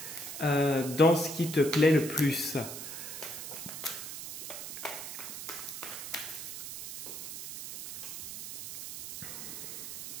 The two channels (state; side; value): noise; right; hiss, 8 dB below the sound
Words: dans ce qui te plaît le plus.